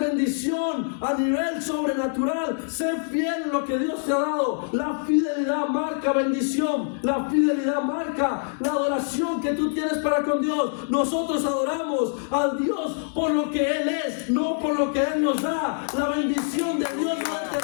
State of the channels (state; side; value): silent; right; 62 dB below the other